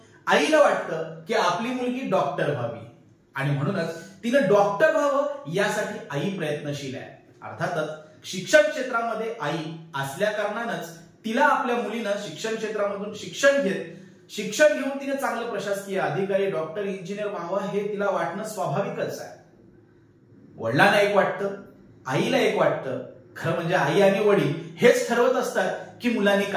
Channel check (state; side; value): identical; both; correlation 1.00